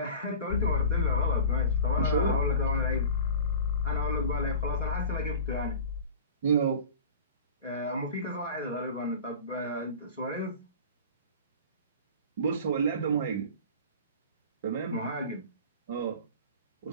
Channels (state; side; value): inverted; both; correlation -0.36